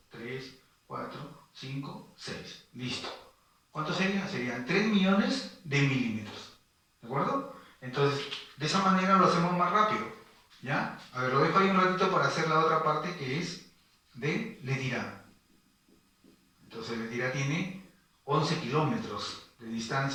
3, 4, 5, 6. Listo. ¿Cuánto sería? Serían 3 millones de milímetros. ¿De acuerdo? Entonces, de esa manera lo hacemos más rápido. ¿Ya? A ver, lo dejo ahí un ratito para hacer la otra parte que es de Letirá. Entonces, Letirá tiene 11 kilómetros de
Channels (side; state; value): both; identical; correlation 1.00